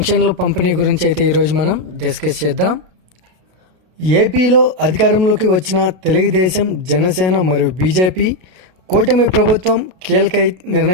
పంపిణీ గురించి అయితే ఈరోజు మనం డిస్కస్ చేద్దాం. ఏపీలో అధికారంలోకి వచ్చిన తెలుగుదేశం, జనసేన మరియు బీజేపీ కూటమి ప్రభుత్వం కీలక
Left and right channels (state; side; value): late; left; 32 ms